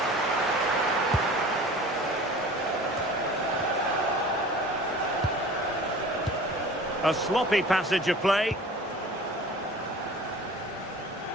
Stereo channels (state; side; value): normal; both; correlation 0.43